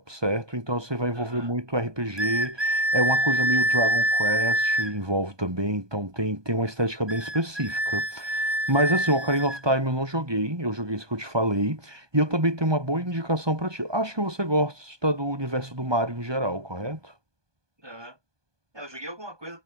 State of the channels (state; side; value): late; left; 1.2 ms